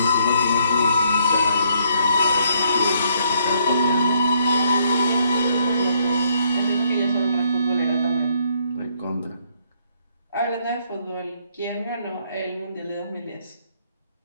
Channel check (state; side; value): inverted; both; correlation -0.69